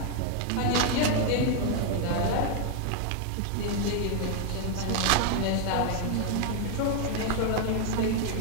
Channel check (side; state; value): both; different; correlation 0.00